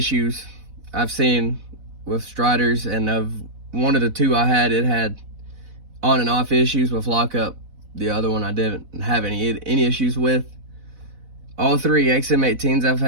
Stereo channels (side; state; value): left; late; 4.0 ms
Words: I've seen with Striders, and of one of the two I had, it had on and off issues with lockup. The other one I didn't have any issues with. All three XM-18s I've